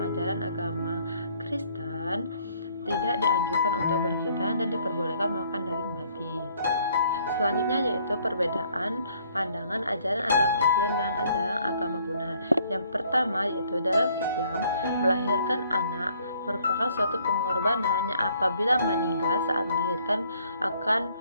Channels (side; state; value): both; inverted; correlation -0.63